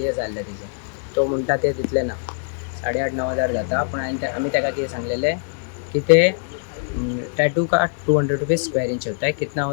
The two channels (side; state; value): right; silent; digital silence